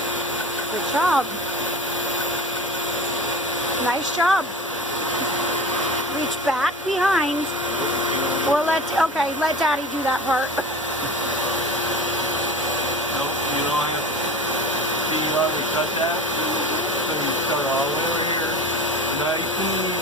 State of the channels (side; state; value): both; normal; correlation 0.34